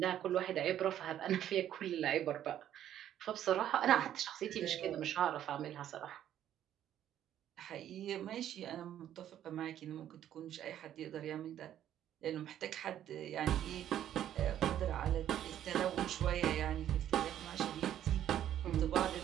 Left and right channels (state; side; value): quieter; left; 11.1 dB